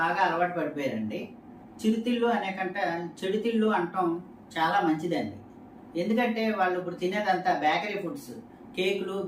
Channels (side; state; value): both; identical; correlation 1.00